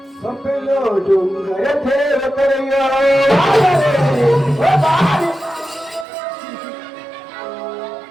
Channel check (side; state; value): left; drops out; at 6.1 s